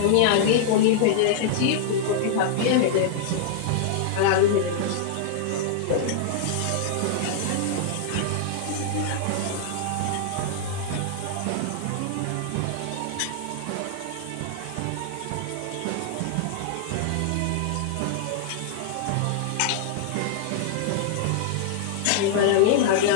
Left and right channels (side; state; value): both; different; correlation -0.01